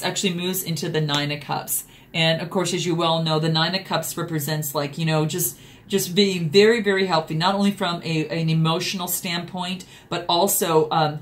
actually moves into the Nine of Cups. And, of course, as you well know, the Nine of Cups represents, like, just being very, very healthy, not only from an emotional standpoint, but also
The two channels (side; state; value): both; identical; correlation 1.00